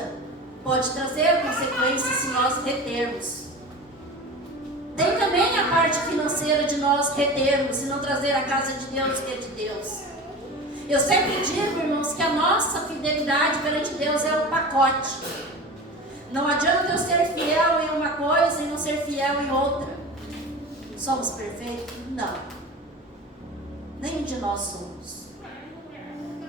pode trazer consequências se nós retermos também a parte financeira de nós retermos e não trazer a casa de Deus, que é de Deus. Eu sempre digo, irmãos, que a nossa fidelidade perante Deus é um pacote. Não adianta eu ser fiel em uma coisa e não ser fiel em outra. Somos perfeitos? Não. Nenhum de nós somos.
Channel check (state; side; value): normal; both; correlation 0.33